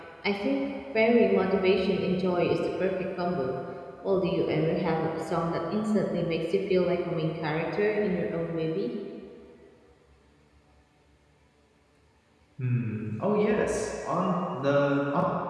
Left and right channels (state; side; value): identical; both; correlation 1.00